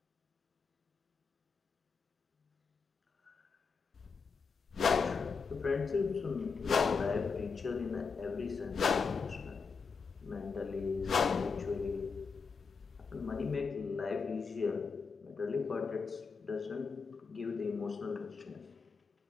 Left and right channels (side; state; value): right; quieter; 5.2 dB